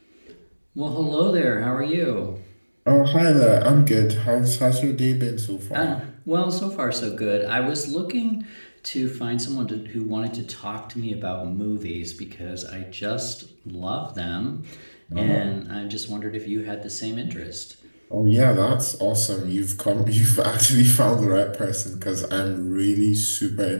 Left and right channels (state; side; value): inverted; both; correlation -1.00